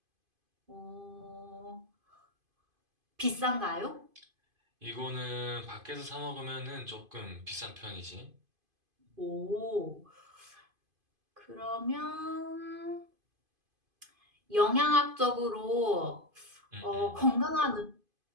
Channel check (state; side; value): late; left; 2.5 ms